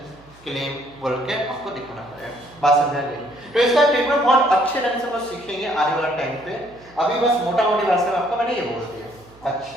क्लेम बोल के आपको दिखाना पड़ेगा। बात समझ गई? तो इसका ट्रीटमेंट बहुत अच्छे ढंग से हम सीखेंगे आने वाले टाइम पे। अभी बस मोटा मोटी भाषा में आपको मैंने ये बोल दिया।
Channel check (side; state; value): right; noise; hum, 26 dB below the sound